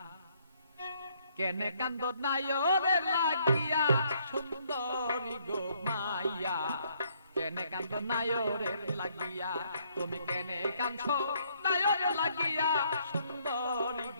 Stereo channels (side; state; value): both; inverted; correlation -0.68